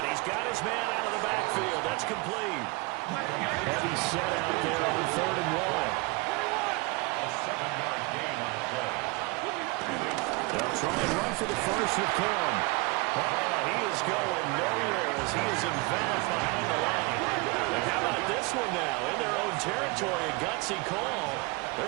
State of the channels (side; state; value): left; quieter; 26.2 dB